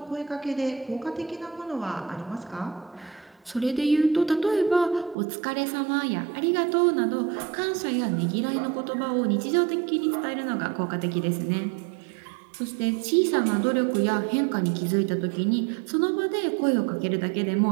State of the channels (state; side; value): drops out; left; at 5.2 s